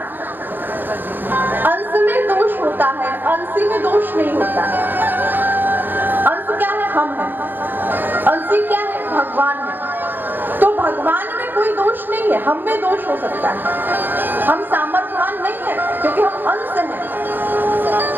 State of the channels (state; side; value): late; left; 0.093 ms